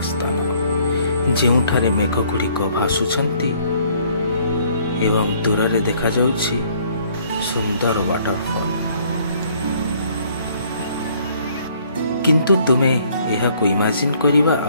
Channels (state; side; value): inverted; both; correlation -0.62